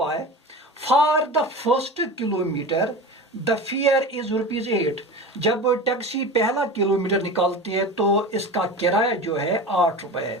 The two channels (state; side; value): normal; both; correlation 0.30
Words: है, for the first kilometre the fare is ₹8। जब टैक्सी पहला किलोमीटर निकालती है तो इसका किराया जो है 8 रुपए